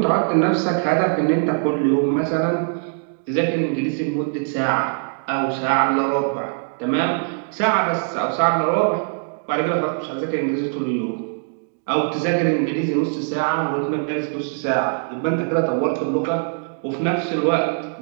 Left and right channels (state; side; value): silent; left; digital silence